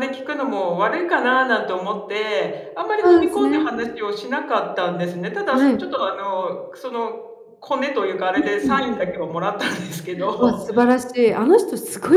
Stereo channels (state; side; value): identical; both; correlation 1.00